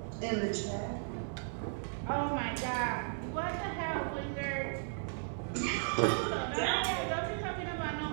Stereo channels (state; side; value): silent; left; digital silence